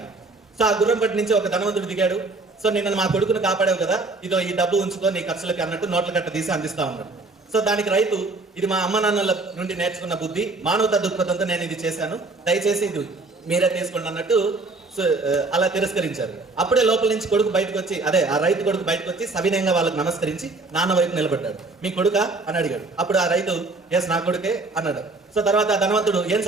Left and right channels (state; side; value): quieter; left; 3.4 dB